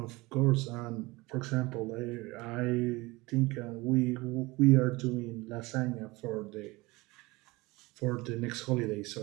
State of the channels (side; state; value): left; quieter; 22.4 dB